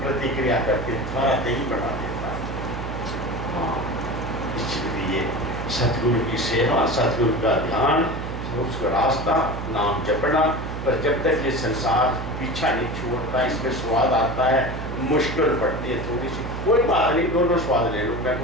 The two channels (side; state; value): right; noise; hum, 6 dB below the sound